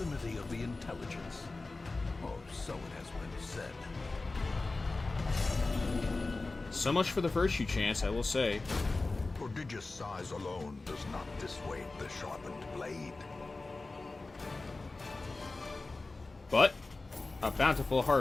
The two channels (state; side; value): quieter; right; 3.4 dB